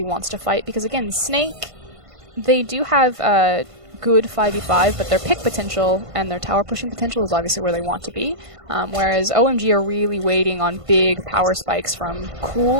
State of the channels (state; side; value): late; left; 1.5 ms